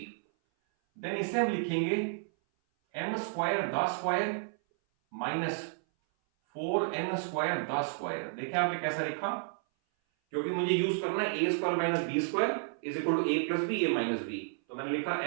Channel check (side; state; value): left; silent; 57 dB below the other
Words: देन इसे हम लिखेंगे m² the square -4n² the square. देखिए आपने कैसा लिखा, क्योंकि मुझे यूज करना है a² - b² = a + b a - b, तो मैंने लिखा